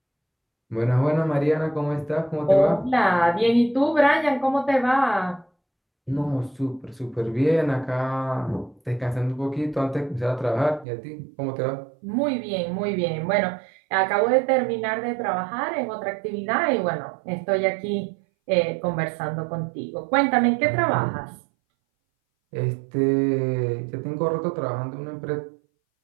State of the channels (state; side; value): drops out; left; at 10.9 s